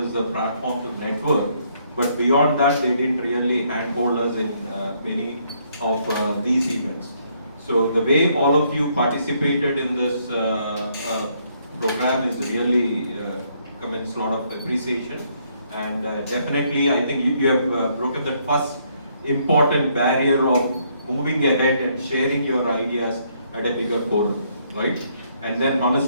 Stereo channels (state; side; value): inverted; both; correlation -0.70